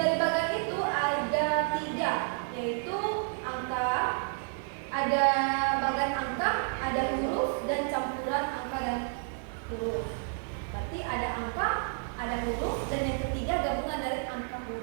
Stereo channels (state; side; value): silent; left; 57 dB below the other